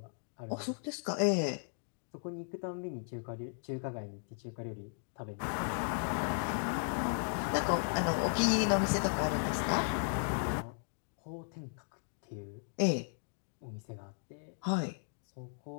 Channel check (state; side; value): silent; right; digital silence